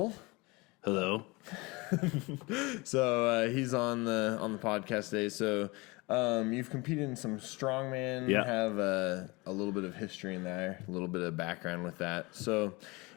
Hello. So he's on the podcast today. So you've competed in some strongman. Yeah. Have a little bit of history in there, a little bit of background with that. So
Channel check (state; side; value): quieter; right; 24.9 dB